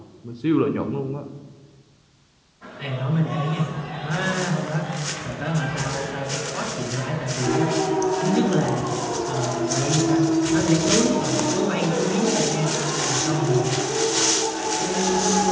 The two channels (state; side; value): identical; both; correlation 1.00